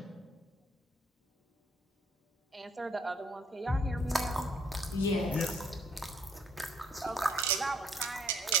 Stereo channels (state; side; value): normal; both; correlation 0.65